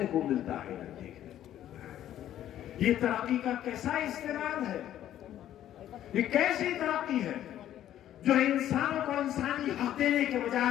को मिलता है न देखने को मिलता है। ये तरक्की का कैसा इस्तेमाल है? ये कैसी तरक्की है जो इंसानों को इंसानी हक देने के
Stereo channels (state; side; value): quieter; right; 11.8 dB